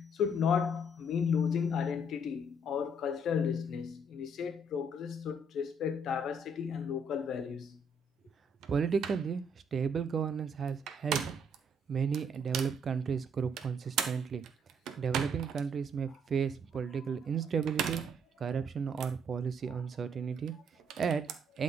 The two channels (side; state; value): both; normal; correlation 0.67